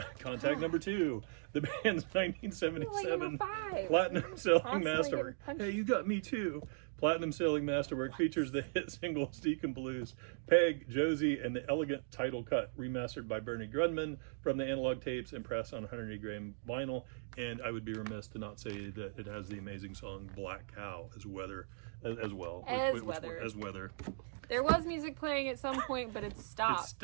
Contact number 2. The band's 1977 Number 5. platinum selling Constantly masterwork. getting punched. Hey, you got me too. Platinum selling masterwork features the hit singles Deacon Blues, Peg, Josie, and the elegant title cut remastered by Bernie Grundman from the analog tapes and pressed on 180-gram vinyl. And I would be remiss to not say that it has the amazing song Black Cow as well. As Weather. There was music playing at some point, but it stopped. It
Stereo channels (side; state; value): left; silent; digital silence